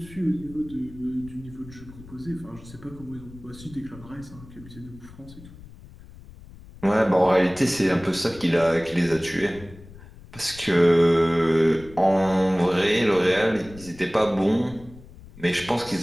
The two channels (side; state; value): left; noise; rumble, 19 dB below the sound